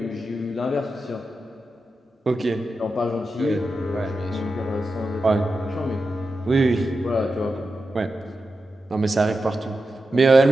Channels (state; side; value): normal; both; correlation 0.90